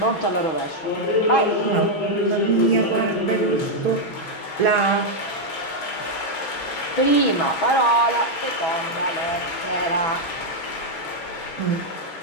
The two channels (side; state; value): right; late; 6.2 ms